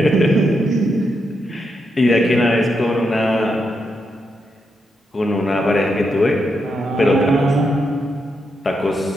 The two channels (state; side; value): normal; both; correlation 0.83